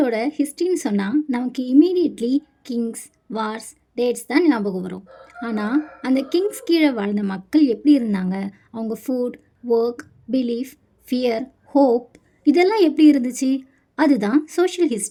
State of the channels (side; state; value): both; identical; correlation 1.00